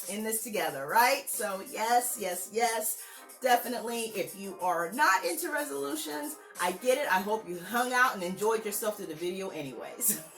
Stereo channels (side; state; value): both; identical; correlation 1.00